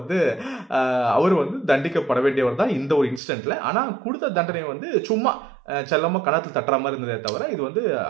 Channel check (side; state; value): left; drops out; at 3.2 s